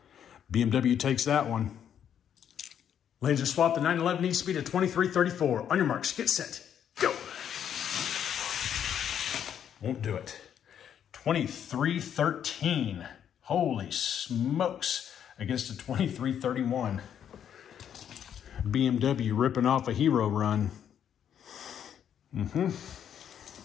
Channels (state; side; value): quieter; right; 9.1 dB